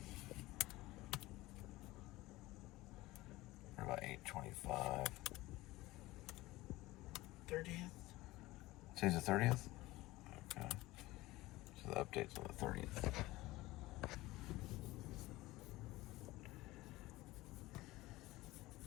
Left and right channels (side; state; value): right; quieter; 18.9 dB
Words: We're about 8:25. 30th? Today's the 30th? Okay. So the update's on the 30th.